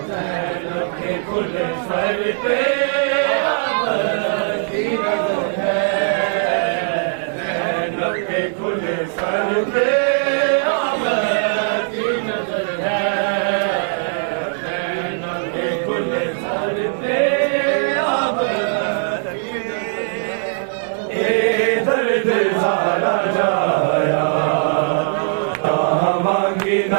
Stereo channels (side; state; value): left; silent; 66 dB below the other